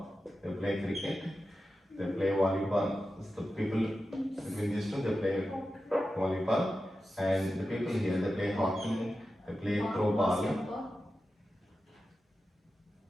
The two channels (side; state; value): both; normal; correlation 0.92